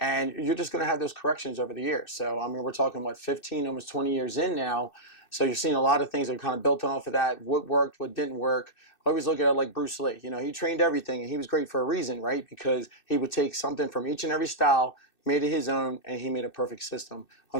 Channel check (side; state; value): right; late; 2.6 ms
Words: you're just going to have those corrections over the years. So, I mean, we're talking, 15, almost 20 years in now. So you're seeing a lot of things that are kind of built on off of that. What worked, what didn't work. I always look at it like Bruce Lee. You know, he trained everything, and he was great for a reason, right? Because he would take something from each and every style, made it his own, and he made a perfect system.